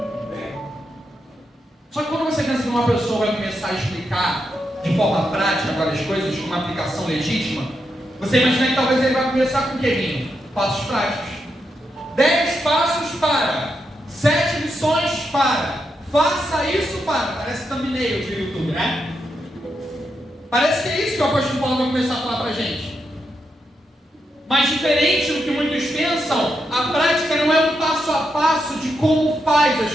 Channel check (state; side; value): normal; both; correlation 0.84